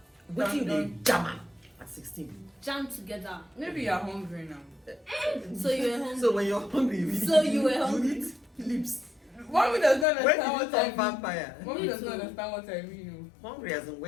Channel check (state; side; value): drops out; right; at 10.1 s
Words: Waiting the Done. jammer at 16. Jam together. Maybe you're hungry now. So you were hungry. So when you're hungry, you So eat, you were hungry. eat lips. Mommy does not When understand did you what I turn mean. vampire? Mommy Me does not too. understand what I mean. Hungry as in